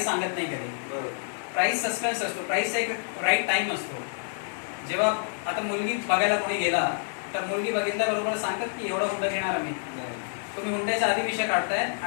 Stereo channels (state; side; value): silent; right; digital silence